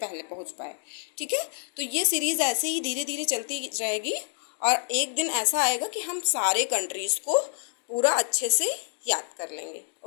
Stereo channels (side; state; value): right; silent; digital silence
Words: पहुंच पाए। ठीक है, तो ये सीरीज़ ऐसे ही धीरे धीरे चलती रहेगी और एक दिन ऐसा आएगा कि हम सारे कंट्रीज़ को पूरा अच्छे से याद कर लेंगे।